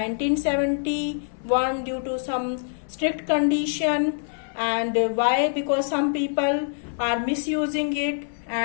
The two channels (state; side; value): silent; right; 62 dB below the other